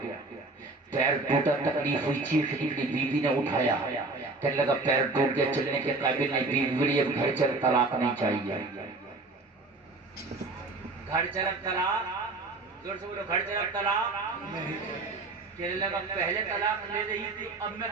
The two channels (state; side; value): quieter; left; 3.4 dB